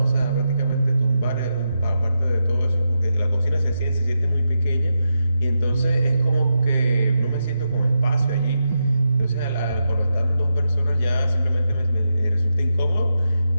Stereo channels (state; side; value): inverted; both; correlation -0.86